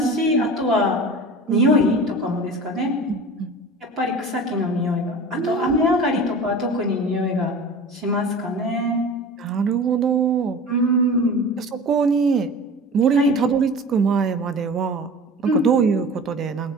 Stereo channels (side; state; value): both; normal; correlation 0.37